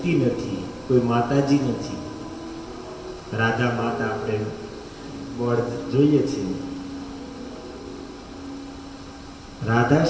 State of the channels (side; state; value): both; identical; correlation 1.00